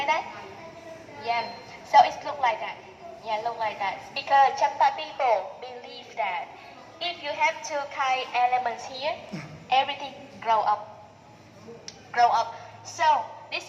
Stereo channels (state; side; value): identical; both; correlation 1.00